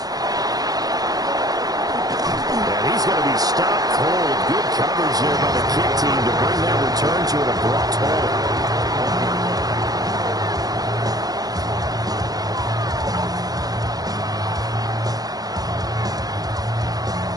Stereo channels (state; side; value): late; left; 0.18 ms